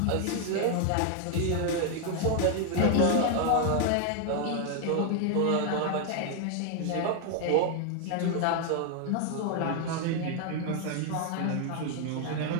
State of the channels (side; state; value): both; different; correlation 0.00